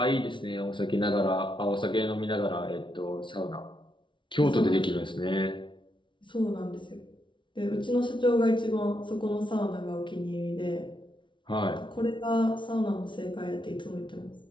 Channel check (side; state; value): right; late; 0.24 ms